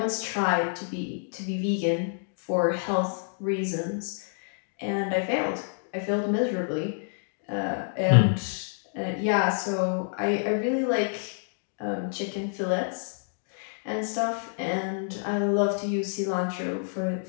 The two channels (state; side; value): silent; right; digital silence